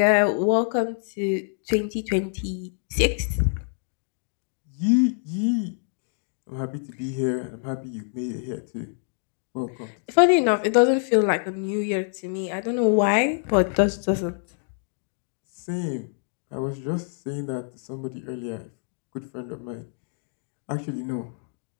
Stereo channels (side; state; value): right; silent; digital silence